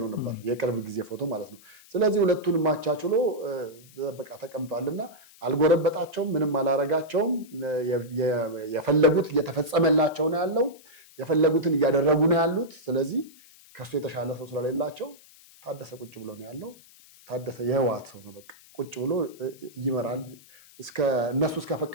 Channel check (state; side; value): noise; left; hiss, 24 dB below the sound